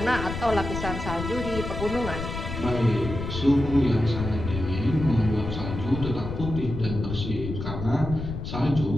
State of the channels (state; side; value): noise; left; rumble, 6 dB below the sound